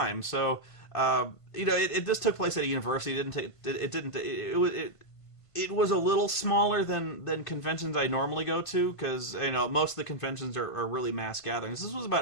So, this took place at a university. It was a little smaller than conventions I normally go to, because most of the conventions are really mass gatherings. This was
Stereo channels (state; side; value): late; right; 1.5 ms